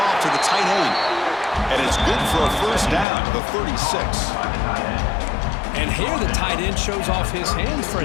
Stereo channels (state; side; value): drops out; right; at 3.1 s